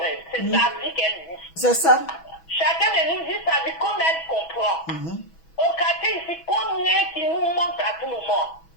C'est sa vie qu'elle vit. C'est ça. Chacun de nous vit sa vie comme elle comprend. Au quartier ici, combien qui nous manquent à tout moment?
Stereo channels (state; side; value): late; right; 6.1 ms